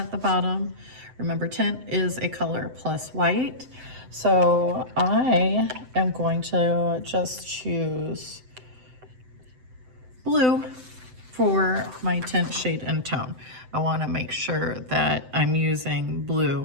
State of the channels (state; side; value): late; left; 7.8 ms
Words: the bottom. Remember, tint is a color plus white. So I am going to just choose blue for my tint, shade, and tone. I want to make sure that I'm using